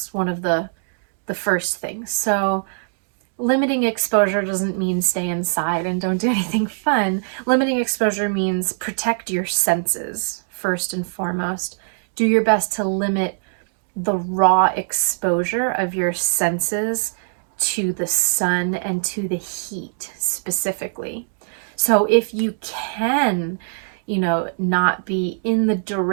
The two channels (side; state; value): left; silent; digital silence